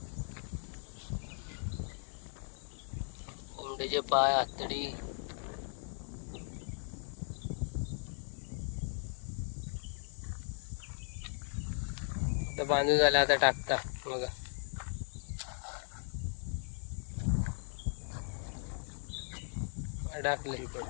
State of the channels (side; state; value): right; silent; 53 dB below the other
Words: कोंबडीचे पाय, आतडी. आता बांधून झालं, आता टाकता बघा. अडकली